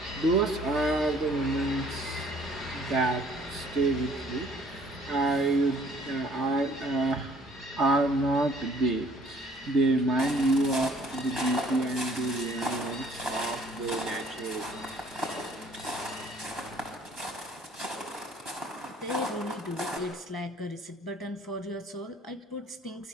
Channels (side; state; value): both; normal; correlation 0.57